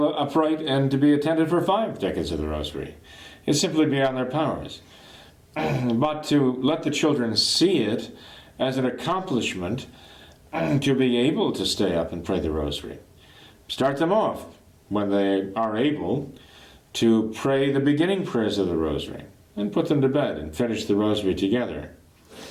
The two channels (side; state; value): both; identical; correlation 1.00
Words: upright and to be attentive for 5 decades of the rosary. It's simply beyond their powers. But to let the children see it as an accomplishment to be able to stay up and pray the rosary. Start them off when they are able to pray the beginning prayers of the rosary and put them to bed and finish the rosary together